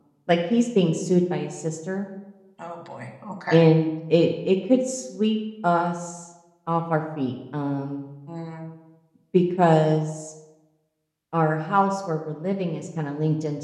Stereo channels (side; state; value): both; identical; correlation 1.00